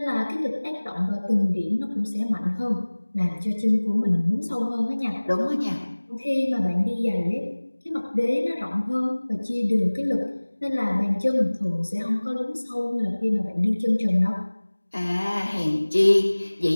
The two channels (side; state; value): both; inverted; correlation -1.00